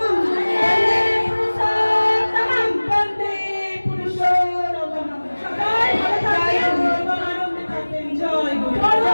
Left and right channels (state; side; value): inverted; both; correlation -1.00